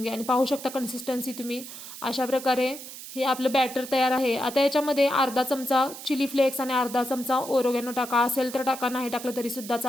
घ्या आणि पाहू शकता कन्सिस्टन्सी तुम्ही. अशा प्रकारे हे आपलं बॅटर तयार आहे. आता याच्यामध्ये अर्धा चमचा चिली फ्लेक्स आणि अर्धा चमचा ओरोगॅनो टाका. असेल तर टाका, नाही टाकलं तरीसुद्धा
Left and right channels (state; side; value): noise; right; hiss, 12 dB below the sound